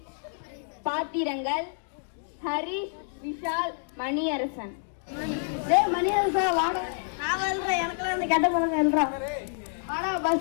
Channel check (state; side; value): silent; right; digital silence